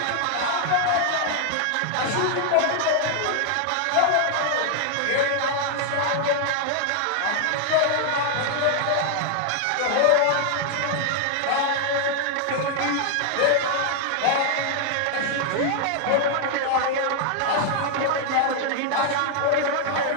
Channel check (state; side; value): different; both; correlation 0.00